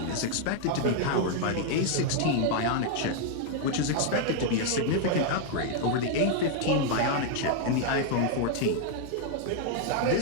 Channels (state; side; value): different; both; correlation 0.00